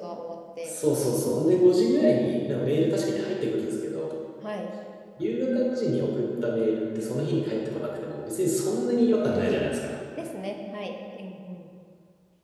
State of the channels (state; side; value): identical; both; correlation 1.00